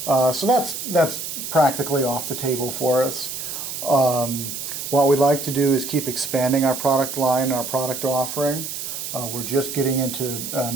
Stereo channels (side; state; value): right; noise; hiss, 6 dB below the sound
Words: So that's practically off the table for us. What we'd like to do is keep expanding our product line, our product offering. We're just getting into